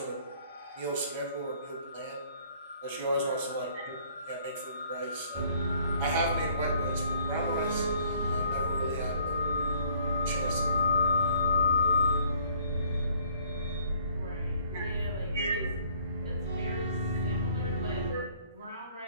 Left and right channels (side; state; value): both; inverted; correlation -0.59